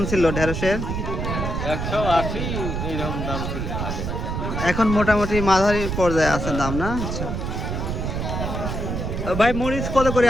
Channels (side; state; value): right; noise; rumble, 3 dB below the sound